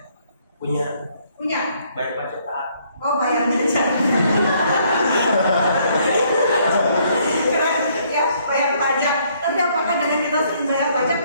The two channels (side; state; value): both; inverted; correlation -0.66